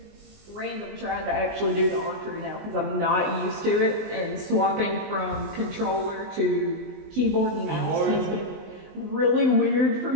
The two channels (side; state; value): left; late; 19 ms